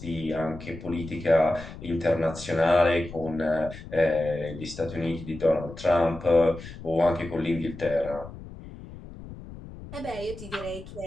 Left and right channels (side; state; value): left; noise; rumble, 14 dB below the sound